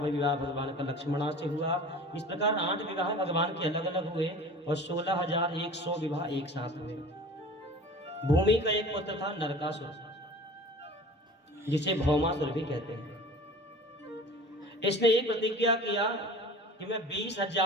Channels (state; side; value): normal; both; correlation 0.41